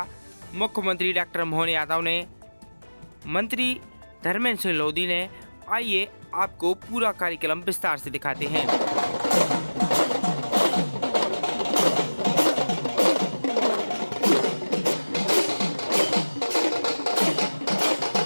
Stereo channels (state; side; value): inverted; both; correlation -1.00